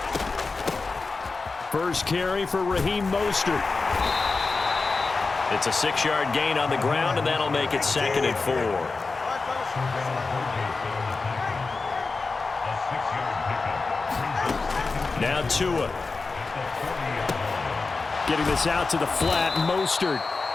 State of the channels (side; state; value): right; quieter; 4.0 dB